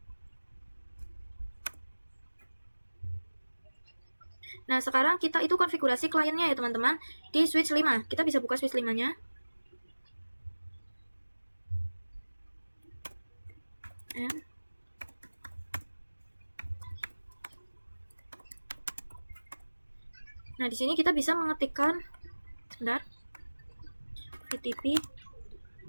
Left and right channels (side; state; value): both; inverted; correlation -1.00